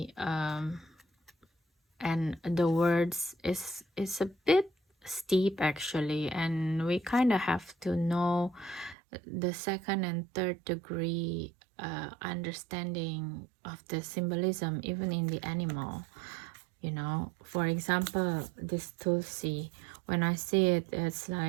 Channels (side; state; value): left; drops out; at 9.0 s